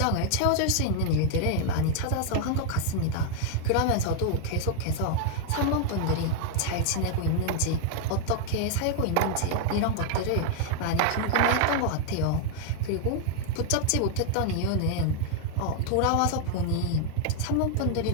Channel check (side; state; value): both; different; correlation 0.00